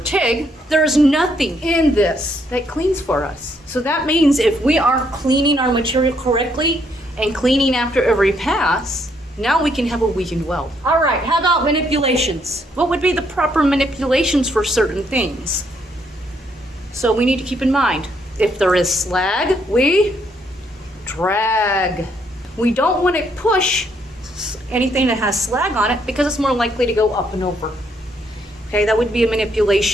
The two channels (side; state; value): both; normal; correlation 0.72